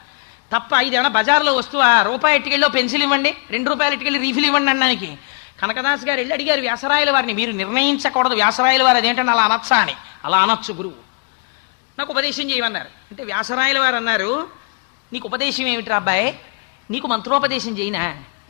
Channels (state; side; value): quieter; right; 35.2 dB